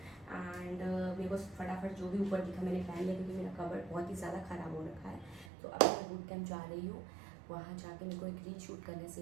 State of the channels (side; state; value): left; drops out; at 5.5 s